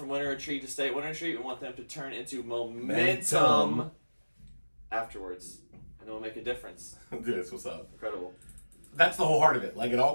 Winter Retreat to stay at Winter Retreat. We want them to turn into momentum afterwards. And it will make a difference. Dude, that's what's up. Incredible. That's the whole heart of it. Like, it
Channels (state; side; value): inverted; both; correlation -1.00